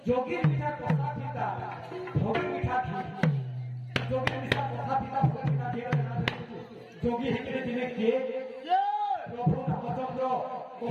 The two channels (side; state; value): both; identical; correlation 1.00